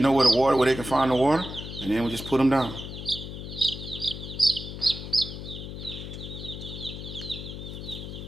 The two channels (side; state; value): left; noise; hum, 9 dB below the sound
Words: where they can find the water, and then we just put them down.